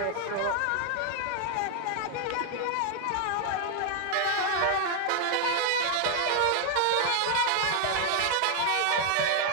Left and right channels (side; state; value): both; different; correlation 0.00